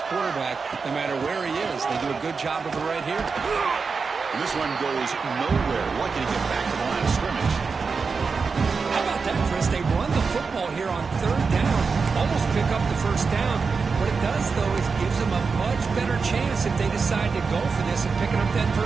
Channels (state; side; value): quieter; left; 4.9 dB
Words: quarterback no matter where he is. They do a good job of it right here. And this one goes nowhere. Lucky to get back to the line of scrimmage. How about that, Chris? They run the football here on third down, almost pick up the first down. What it does, though, is gives them a much better chance if they decide to go for this and picking up that